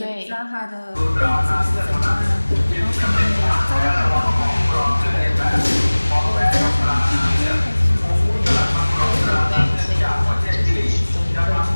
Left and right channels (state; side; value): inverted; both; correlation -1.00